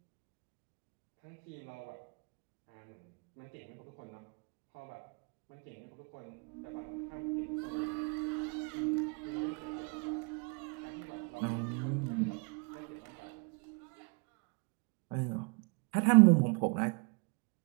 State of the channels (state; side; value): quieter; left; 33.7 dB